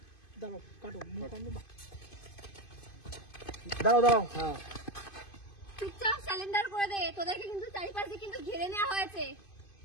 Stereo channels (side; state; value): right; late; 2.5 ms